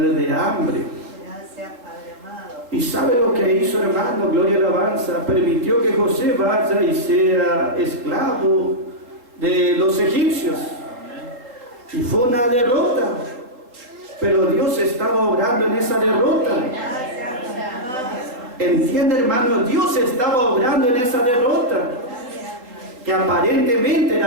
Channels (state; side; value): late; left; 3.9 ms